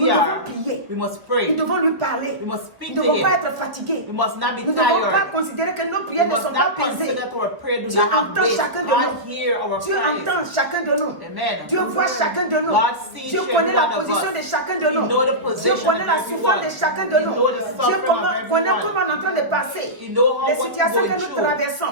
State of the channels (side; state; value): left; late; 1.1 ms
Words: we devons are, prier. we must Nous pray. devons lui parler. We must Nous speak ne to devons pas Him. être fatigués. We must not be Nous ne devons pas tired. considérer que nos We prières ne must sont pas not pesées. consider that our prayer do Dieu not have entend weight. chacun de God nous. hear our Dieu praise. entend chacun de nous. Amen. Dieu voit chacun de nous. God sees Dieu every connaît la one of position us. de chacun de He nous. know the Dieu position connaît of la everyone. souffrance de chacun de He nous. know the Dieu suffering of connaît everyone. comment on est en train de passer. He know how Les what situations we're que going nous through.